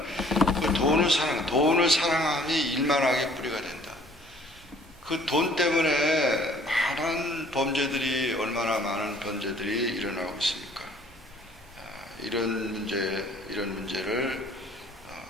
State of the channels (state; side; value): normal; both; correlation 0.57